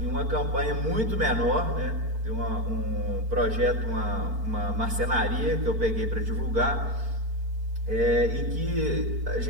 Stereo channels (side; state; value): left; late; 4.5 ms